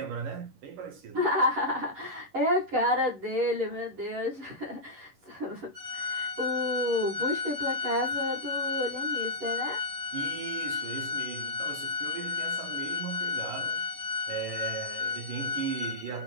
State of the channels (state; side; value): late; left; 11 ms